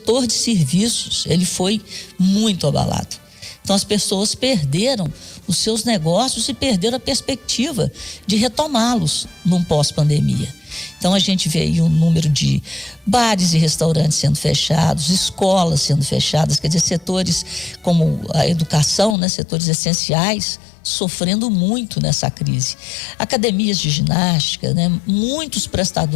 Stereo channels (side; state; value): right; drops out; at 19.2 s